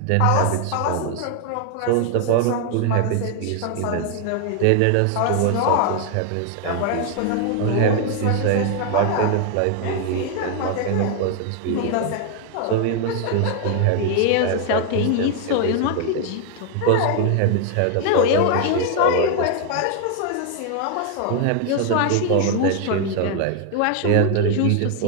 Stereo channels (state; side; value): different; both; correlation 0.00